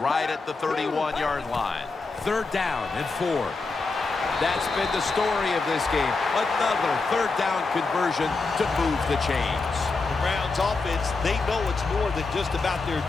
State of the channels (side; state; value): right; quieter; 4.0 dB